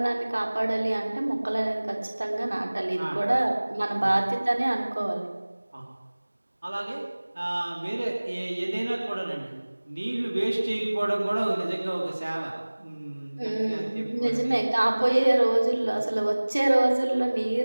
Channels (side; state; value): both; inverted; correlation -1.00